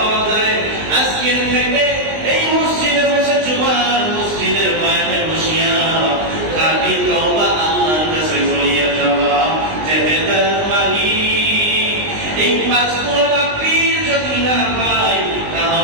যায়, আজকের থেকে এই মসজিদে বসে জুমার মসজিদের বয়ানে বসিয়া খাঁটি তওবা আল্লাহর কাছে করিয়া যাওয়া, যে হেদায়েত মালিক। এই 5 গুণওয়ালা পীর যদি না পাই,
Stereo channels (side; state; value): left; late; 19 ms